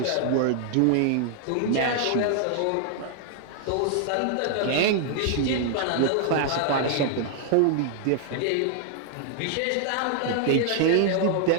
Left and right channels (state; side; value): different; both; correlation 0.00